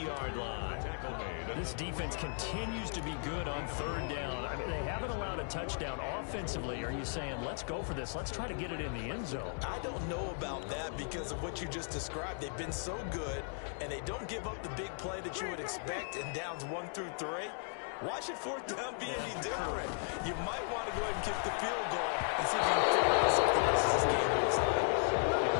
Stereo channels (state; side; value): silent; right; 54 dB below the other